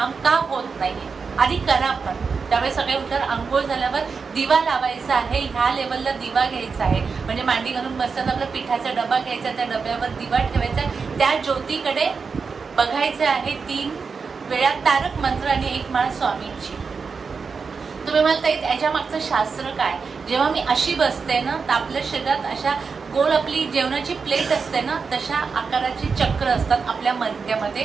का होत नाही आधी करा. पण त्यावेळेस सगळे उठल्यावर आंघोळ झाल्यावर दिवा लावायचा आहे, ह्या लेवलला दिवा घ्यायचा आहे, म्हणजे मांडी घालून बसताना आपला पिठाचा डबा घ्यायचा, त्या डब्यावर दिवा ठेवायचा, त्या ज्योतीकडे बघायचं आहे, 3 वेळा तारक मंत्र आणि 1 माळ स्वामींची. तुम्ही म्हणता याच्या मागचं शास्त्र काय, जेव्हा मी अशी बसते ना तर आपल्या शरीरात अशा गोल आपली जेवणाची प्लेट असते ना तशा आकाराची चक्र असतात, आपल्या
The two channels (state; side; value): quieter; left; 5.2 dB